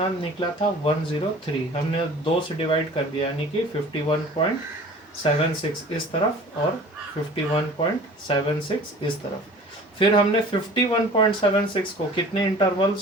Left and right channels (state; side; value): normal; both; correlation 0.44